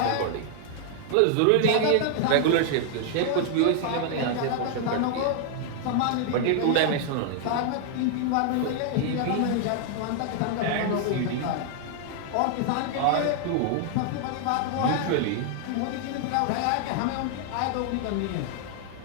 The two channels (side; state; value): both; different; correlation 0.00